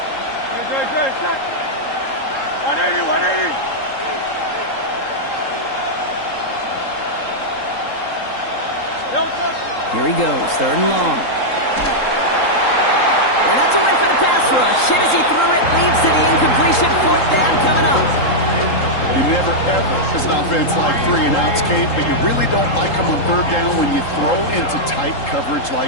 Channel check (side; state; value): right; late; 3.8 ms